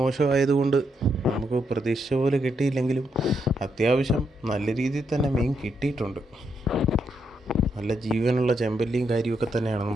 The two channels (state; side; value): normal; both; correlation 0.79